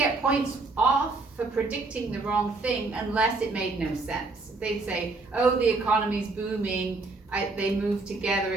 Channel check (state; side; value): quieter; left; 3.5 dB